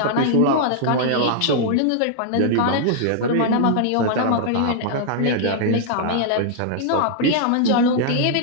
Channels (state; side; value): different; both; correlation -0.01